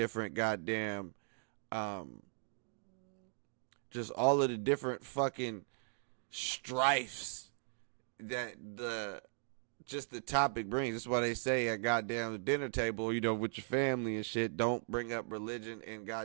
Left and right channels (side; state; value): left; silent; digital silence